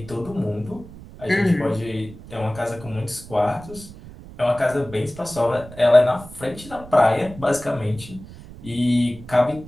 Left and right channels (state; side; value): noise; right; rumble, 17 dB below the sound